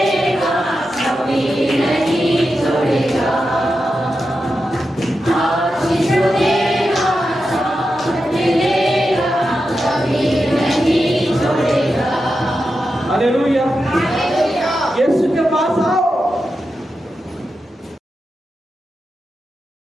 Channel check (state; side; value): normal; both; correlation 0.89